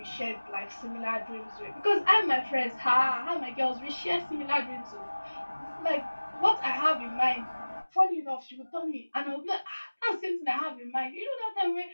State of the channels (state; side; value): inverted; both; correlation -1.00